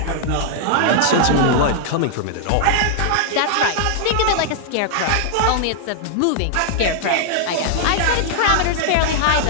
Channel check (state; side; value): different; both; correlation -0.01